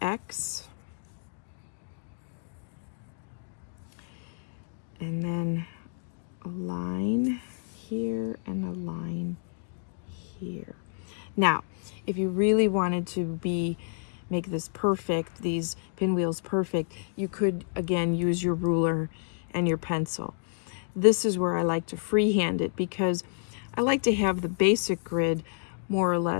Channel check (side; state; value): right; silent; digital silence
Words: X. And then a line here and a line here. Now, if you really wanted to make this perfect, these pinwheels perfect, you could again use your ruler and your pencil. This is where I like to freehand it, because I like to have the basic grid more or